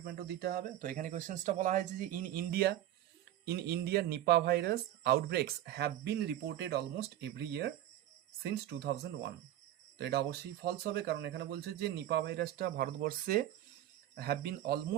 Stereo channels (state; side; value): quieter; left; 12.9 dB